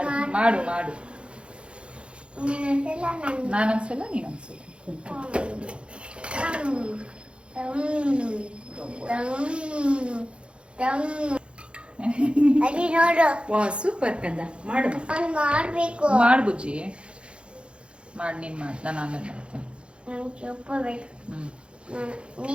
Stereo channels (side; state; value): left; late; 0.057 ms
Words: ಮಾಡು ಮಾಡು. ನಾನೊಂದ್ಸಲ ನೀನೊಂದ್ಸಲ. ವಾ ಸೂಪರ್ ಕಂದ. ಮಾಡು ಮಾಡು ಬುಜ್ಜಿ, ಮಾಡಿ. ನೀನು ಮಾಡಿ, ನಾನು ಆಮೇಲೆ ಮಾಡ್ತೀನಿ.